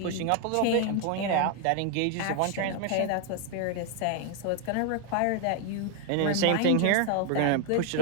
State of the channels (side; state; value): both; different; correlation 0.01